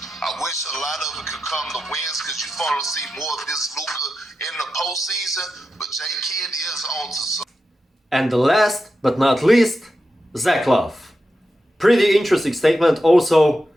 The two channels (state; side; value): normal; both; correlation 0.89